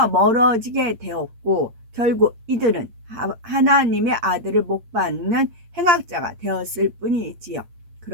멀어지게 되었고 결국 이들은 하나님의 아들을 못 받는 행악자가 되었을 뿐이지요.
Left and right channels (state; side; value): late; left; 8.6 ms